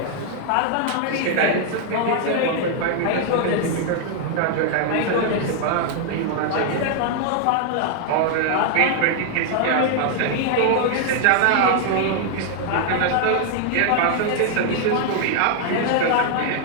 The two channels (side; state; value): both; different; correlation 0.00